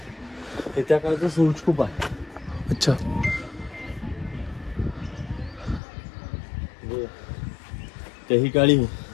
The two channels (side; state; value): right; drops out; at 5.8 s